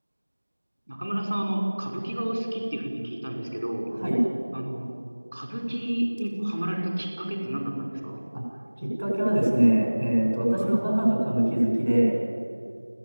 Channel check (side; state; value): both; inverted; correlation -1.00